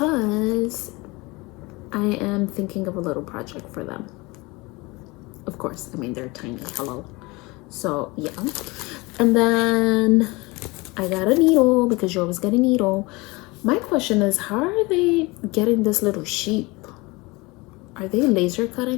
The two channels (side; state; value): right; quieter; 24.2 dB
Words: I am thinking of a little project for them. Of course, I mean, they're tiny, hello. So yeah, and then I got a needle because you always get a needle. My question is, how are they getting this little sheep? Are they laser